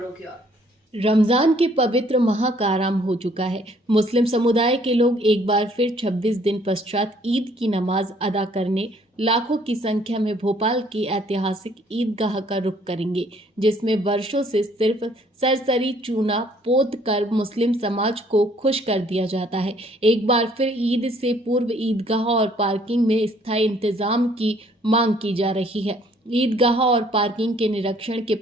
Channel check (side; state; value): both; normal; correlation 0.62